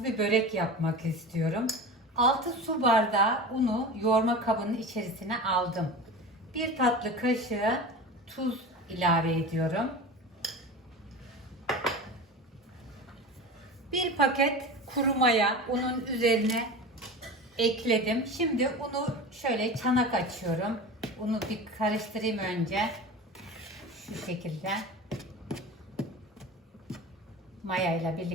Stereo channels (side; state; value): both; normal; correlation 0.31